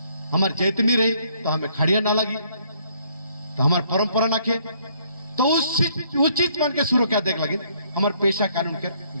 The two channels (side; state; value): both; inverted; correlation -0.67